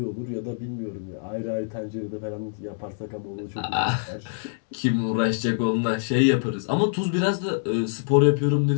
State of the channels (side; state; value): right; silent; digital silence